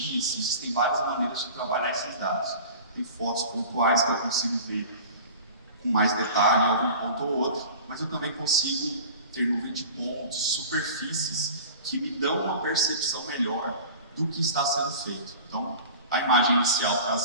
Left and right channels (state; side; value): inverted; both; correlation -0.39